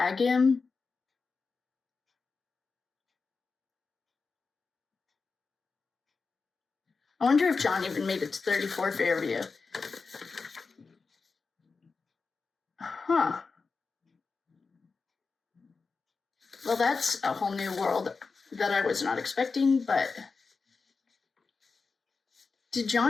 him? I wonder if John even made it to 34 Fairview. Huh. Well, that's a whole new world that I was not expecting, but did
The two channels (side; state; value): right; quieter; 4.6 dB